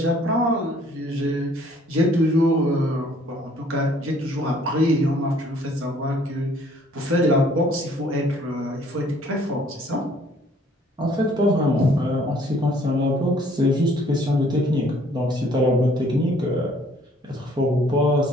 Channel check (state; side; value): normal; both; correlation 0.59